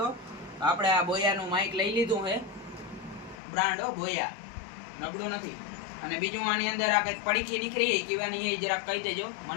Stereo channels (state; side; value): drops out; right; at 3.4 s